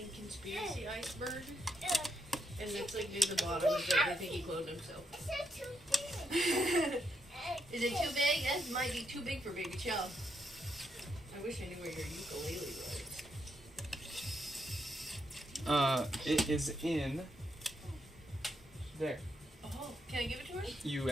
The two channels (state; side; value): normal; both; correlation 0.79